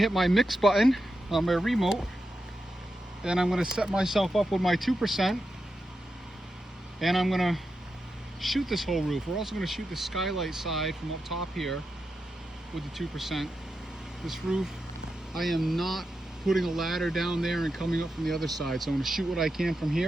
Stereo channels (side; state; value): both; normal; correlation 0.88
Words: my mix button on my remote, and I'm gonna set myself up with my 2%, and I'm gonna shoot this whole roof. We're also gonna shoot the skylight side from up top here with the 2%. This roof, I am not putting a ladder down there and coming up from the other side. So I'm gonna shoot what I can from